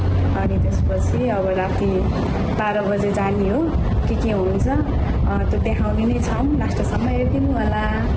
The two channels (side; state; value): both; identical; correlation 1.00